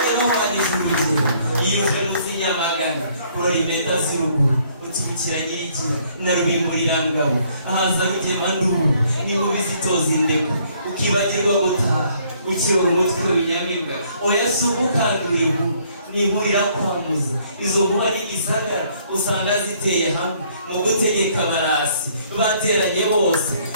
yamuhanije urugero yiyuje munsi y'amagana kurora impeta z'uruguru uturukira nyigira na rubimburirangabo ahaza rugema nduru n'inkubi zitoza indeko ukibagirwa gutaha ukirora umutwe w'inyamibwa oya si ukukandura inkuru nihurira kwamuza izo nkuba n'igisagara usanga ziteye hamwe mu gutegeka abarasi bateranye bose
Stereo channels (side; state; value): both; inverted; correlation -0.64